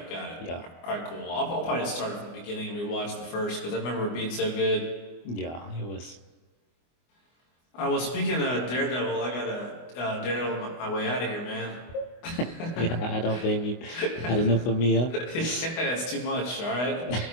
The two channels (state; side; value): late; right; 24 ms